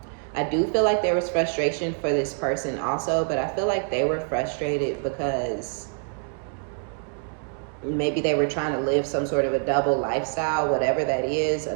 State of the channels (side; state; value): left; silent; 55 dB below the other